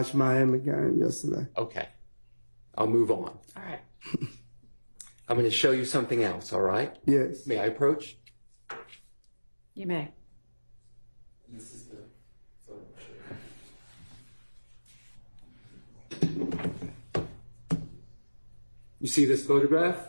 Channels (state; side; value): inverted; both; correlation -1.00